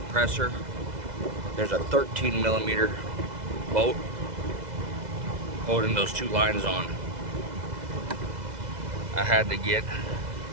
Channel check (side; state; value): left; late; 2.0 ms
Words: there's a 13mm bolt holding those two lines on. I had to get